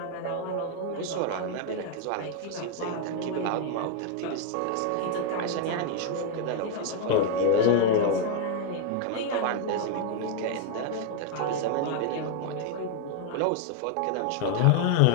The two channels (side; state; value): both; different; correlation 0.00